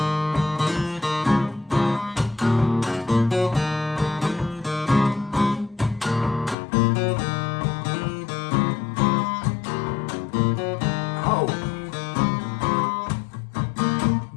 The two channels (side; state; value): right; drops out; at 6.6 s